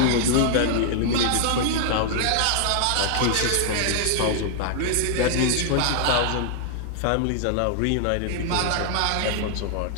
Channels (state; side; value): different; both; correlation -0.01